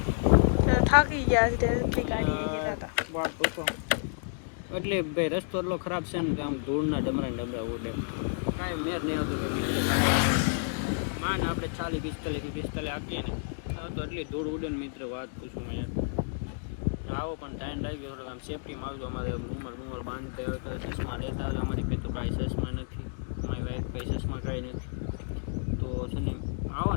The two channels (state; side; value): silent; right; digital silence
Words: થાકી ગયા છે. વાત પૂછો એટલે ભાઈ રસ્તો એટલો ખરાબ છે ને કે આમ ધૂળના ડમરા ઉડે, કાંઈ મેર નહીં આવતો. માને આપણે 40-45 આપીએ ને તો એટલી ધૂળ ઉડે ને મિત્ર, વાત પૂછું યાર. આવો પણ ટાઈમ લાગી ગયો થોડોક. આમ સેફટીમાં આવજો. અમારે રૂમર બાંધતા હોય તો ચશ્મા લેતા હોય. અમારી પાસે તો કાંઈ ચશ્મા નથી, અમારી વાઈફ કંઈ ચશ્મા કાંઈ નથી. તો છે ને આવો